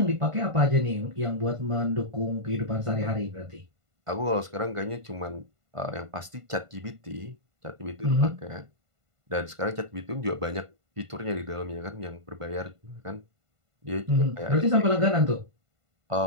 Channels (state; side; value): late; left; 1.5 ms